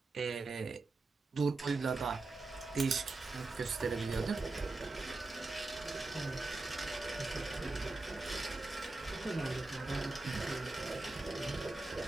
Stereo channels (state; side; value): quieter; left; 3.4 dB